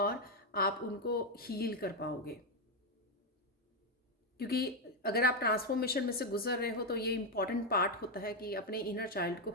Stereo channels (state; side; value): normal; both; correlation 0.05